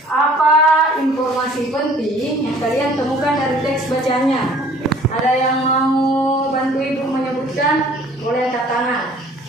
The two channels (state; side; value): normal; both; correlation 0.53